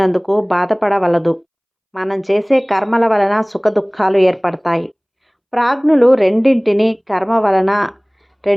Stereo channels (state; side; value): identical; both; correlation 1.00